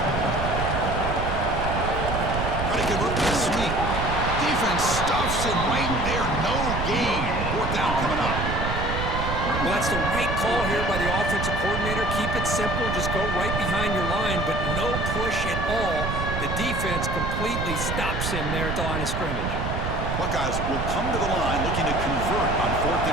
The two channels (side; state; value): right; noise; rumble, 3 dB below the sound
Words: Trying to convert the sweep. Defense stuffs him right there. No gain. 4th down coming up. Well, that's the right call here by the offensive coordinator. Keep it simple. Just go right behind your line, but no push at all. The defense completely stops him there at the line of scrimmage. Buckeyes will come to the line looking to convert on 4th